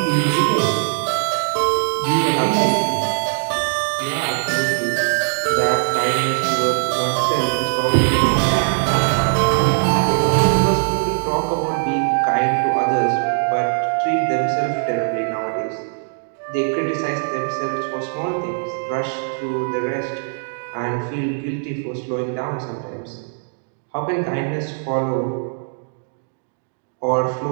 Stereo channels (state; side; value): silent; left; digital silence